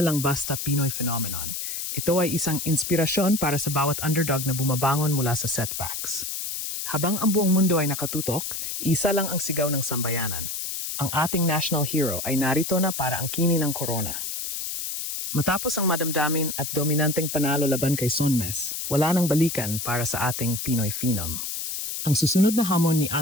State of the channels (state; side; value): noise; left; hiss, 4 dB below the sound